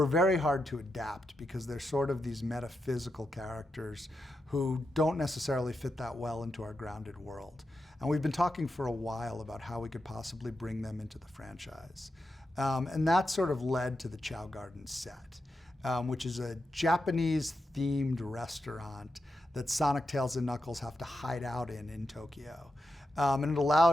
very hard to adapt because they're sort of these metaphysical characters who don't necessarily fit that well into our grounded world. And we've been talking for a while about how we could possibly bring them into the franchise. And that sort of led to the Chow Garden set, which is a Japanese-themed restaurant that Sonic, Tails, and Knuckles have to hide out in Tokyo. And it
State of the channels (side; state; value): both; normal; correlation 0.87